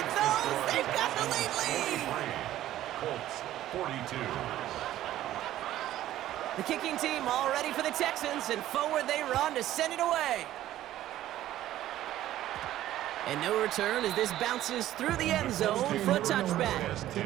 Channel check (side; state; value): left; quieter; 13.5 dB